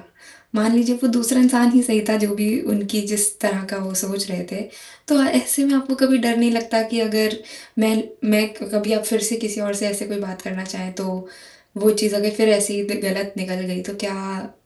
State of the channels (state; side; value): identical; both; correlation 1.00